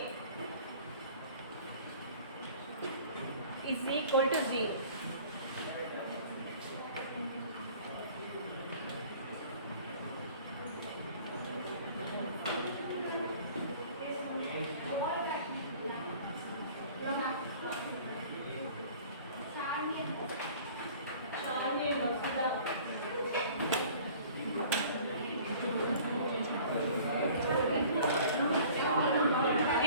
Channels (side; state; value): both; inverted; correlation -0.49